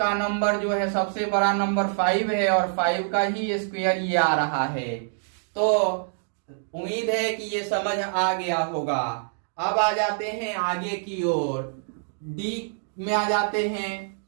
नंबर जो है सबसे बड़ा नंबर 5 है और 5 का ही स्क्वायर ये आ रहा है। तो उम्मीद है कि ये समझ आ गया होगा। अब आ जाते हैं आगे की ओर, डी में आ जाते हैं,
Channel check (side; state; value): left; silent; digital silence